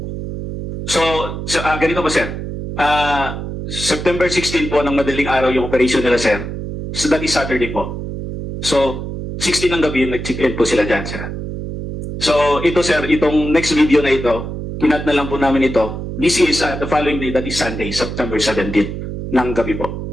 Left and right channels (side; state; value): right; noise; hum, 6 dB below the sound